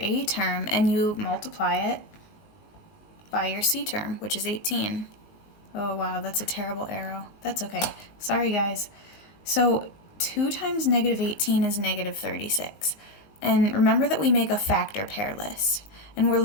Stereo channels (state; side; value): late; right; 19 ms